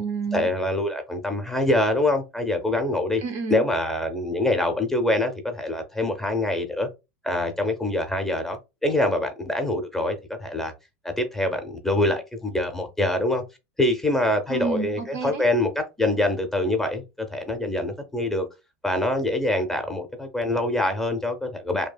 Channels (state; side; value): normal; both; correlation 0.53